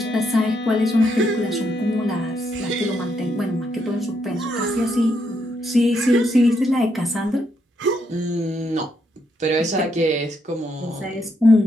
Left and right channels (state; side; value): normal; both; correlation 0.77